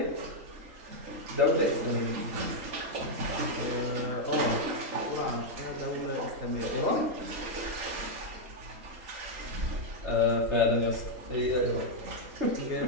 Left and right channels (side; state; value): left; late; 3.8 ms